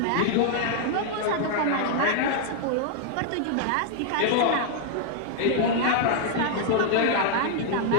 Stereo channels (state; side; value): different; both; correlation 0.00